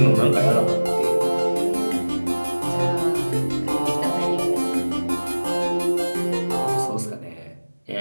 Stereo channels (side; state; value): both; inverted; correlation -1.00